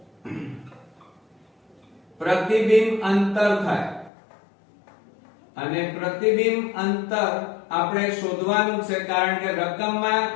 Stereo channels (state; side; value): drops out; right; at 4.1 s